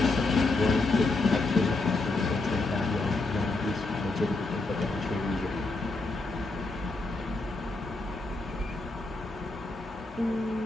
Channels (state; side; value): quieter; right; 3.3 dB